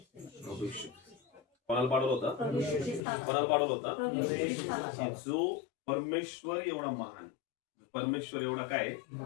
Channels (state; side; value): drops out; right; at 3.0 s